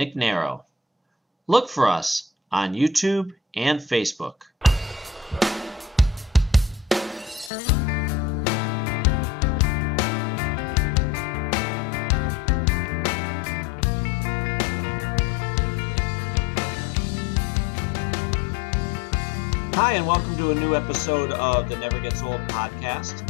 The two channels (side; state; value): right; drops out; at 7.5 s